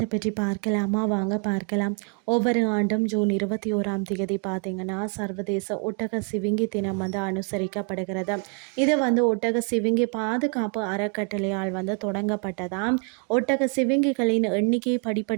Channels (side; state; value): left; quieter; 38.7 dB